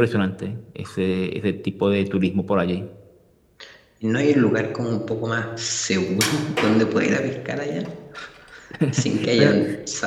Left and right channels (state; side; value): identical; both; correlation 1.00